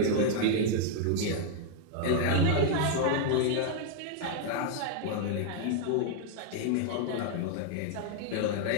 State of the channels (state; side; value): different; both; correlation 0.00